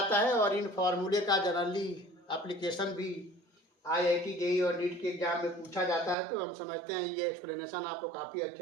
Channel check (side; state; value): left; drops out; at 6.2 s